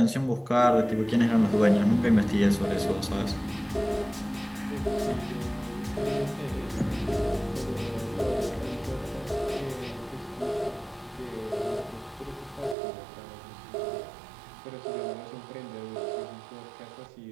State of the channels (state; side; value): drops out; left; at 12.8 s